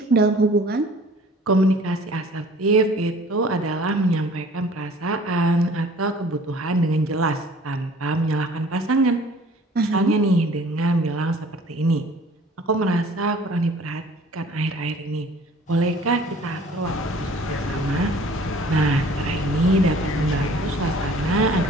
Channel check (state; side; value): normal; both; correlation 0.51